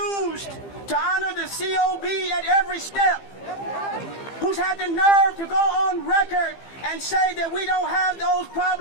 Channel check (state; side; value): late; right; 15 ms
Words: to honor the COB at every step, who's had the nerve to go on record and say that we don't have those